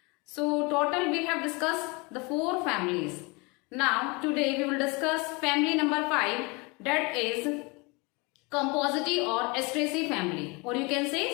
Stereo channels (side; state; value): right; quieter; 28.0 dB